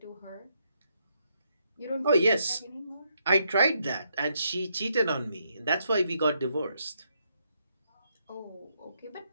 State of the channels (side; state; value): both; inverted; correlation -0.77